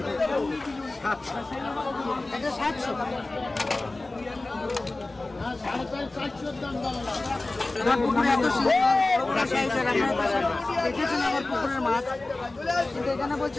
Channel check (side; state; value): right; quieter; 3.0 dB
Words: এটা 700। পুকুরে এত দেখেছেন আমার পুকুরের মাছ, কিন্তু এখানে বলছে